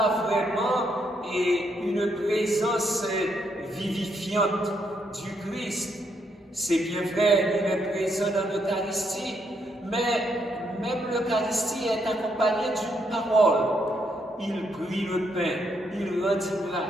vraiment une présence vivifiante du Christ. C'est bien vrai, il est présent dans l'Eucharistie, mais même l'Eucharistie est accompagnée d'une parole. Il prit le pain, il rendit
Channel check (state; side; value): normal; both; correlation 0.76